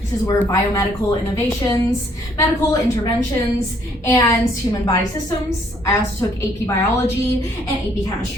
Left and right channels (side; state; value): both; normal; correlation 0.65